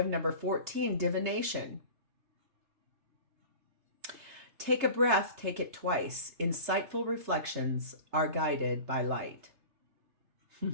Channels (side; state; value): left; late; 3.3 ms